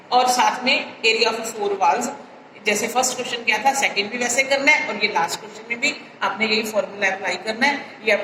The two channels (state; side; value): identical; both; correlation 1.00